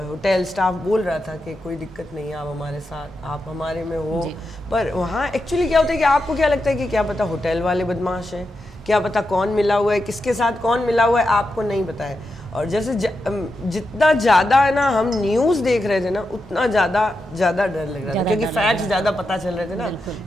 स्टाफ बोल रहा था कि कोई दिक्कत नहीं है, आप हमारे साथ, आप हमारे में हो, पर वहाँ एक्चुअली क्या होता है कि आपको क्या लगता है कि क्या पता होटल वाले बदमाश हैं, क्या पता कौन मिला हुआ है, किसके साथ कौन मिला हुआ है, आपको नहीं पता है। और जैसे जितना ज़्यादा है ना हम न्यूज़ देख रहे थे ना, उतना ज़्यादा डर लग रहा था, क्योंकि फैक्ट्स ज़्यादा पता चल रहे थे ना,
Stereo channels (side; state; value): both; normal; correlation 0.87